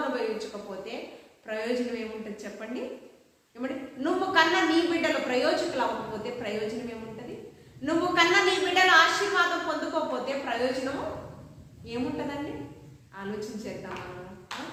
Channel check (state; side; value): identical; both; correlation 1.00